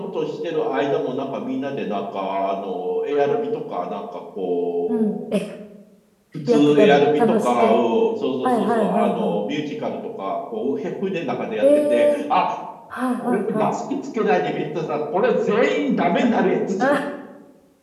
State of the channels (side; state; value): both; identical; correlation 1.00